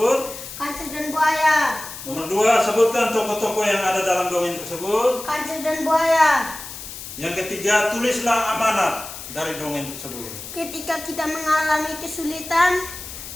Kancil dan Buaya. Nomor 2, sebutkan tokoh-tokoh yang ada dalam dongeng tersebut. Kancil dan Buaya. Yang ketiga, tulislah amanat dari dongeng tersebut. Ketika kita mengalami kesulitan,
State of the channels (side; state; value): left; noise; hiss, 11 dB below the sound